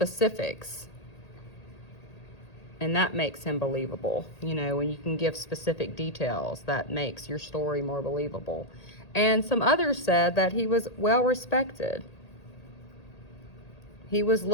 and that makes him believable. You know, when you can give specific details, that makes your story more believable. And some others said that he was well respected. He was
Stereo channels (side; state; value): right; late; 1.8 ms